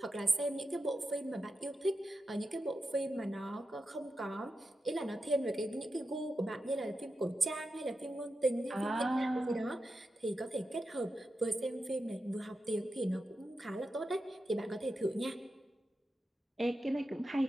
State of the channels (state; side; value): normal; both; correlation 0.89